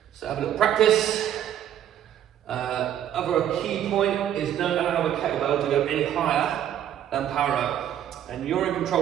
So have a little practice. Other key point is don't allow the kettlebell to go any higher than parallel. And you're in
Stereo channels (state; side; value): quieter; left; 10.7 dB